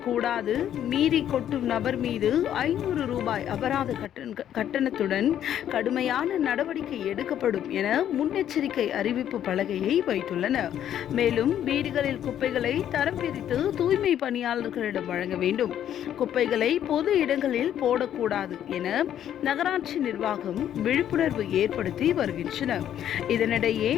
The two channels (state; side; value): quieter; right; 10.5 dB